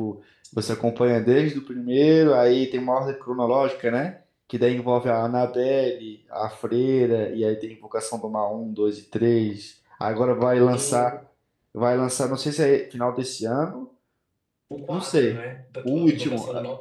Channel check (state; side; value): identical; both; correlation 1.00